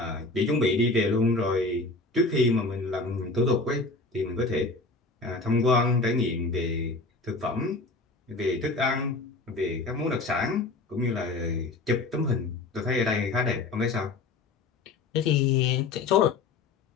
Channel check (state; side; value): quieter; right; 3.5 dB